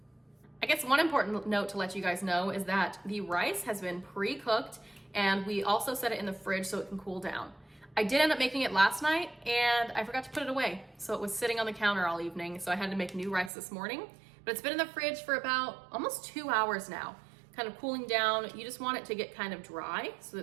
I guess one important note to let you guys know is that the rice has been pre-cooked, and we also set it in the fridge so it can cool down. I did end up making it last night, and I forgot to put it away, so it was sitting on the counter all evening, so I had to make new rice this morning, but it's been in the fridge for about almost 2 hours now, kind of cooling down. You just want it to get kind of dry so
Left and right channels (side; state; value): left; drops out; at 13.5 s